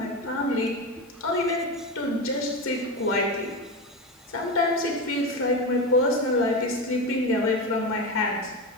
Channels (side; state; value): both; normal; correlation 0.19